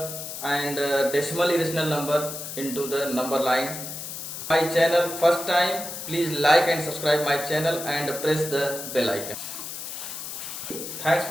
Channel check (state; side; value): noise; left; hiss, 8 dB below the sound